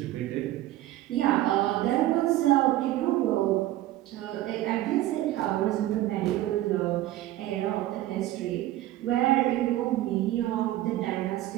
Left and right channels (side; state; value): left; quieter; 14.9 dB